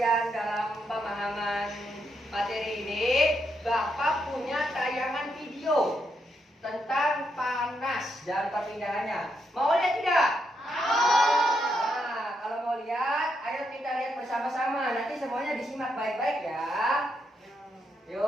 dalam pemahaman materi ini, Bapak punya tayangan video tentang panas dan perpindahannya. Mau lihat tidak? Nah, kalau mau lihat, ayo kita lihat bersama-sama. Nanti semuanya disimak baik-baik ya.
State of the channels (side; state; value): both; normal; correlation 0.80